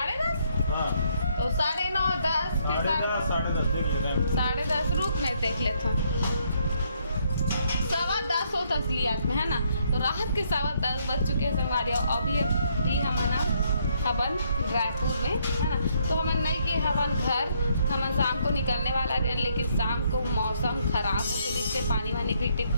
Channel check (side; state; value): both; inverted; correlation -0.71